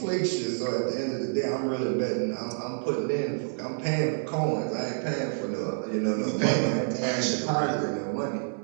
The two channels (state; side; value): silent; left; 59 dB below the other